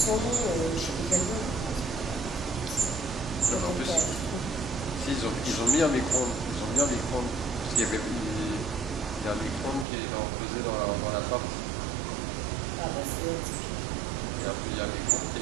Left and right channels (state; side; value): drops out; left; at 9.9 s